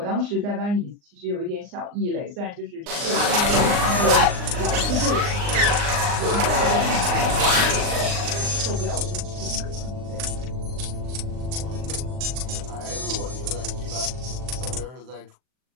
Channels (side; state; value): left; late; 39 ms